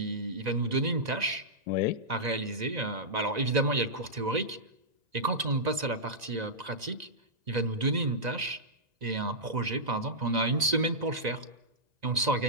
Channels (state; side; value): late; left; 1.9 ms